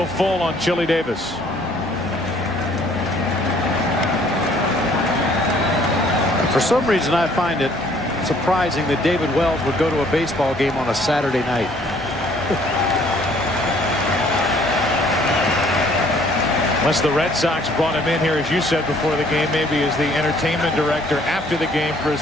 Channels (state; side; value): normal; both; correlation 0.60